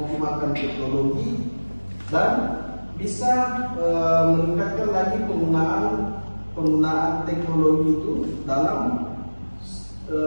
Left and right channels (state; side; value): inverted; both; correlation -1.00